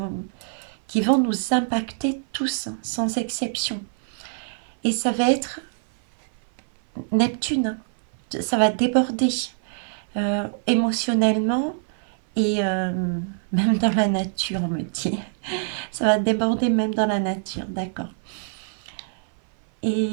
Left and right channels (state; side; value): silent; left; 57 dB below the other